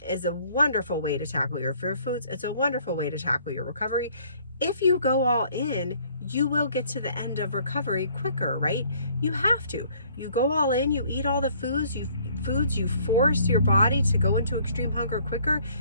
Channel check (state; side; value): inverted; both; correlation -0.60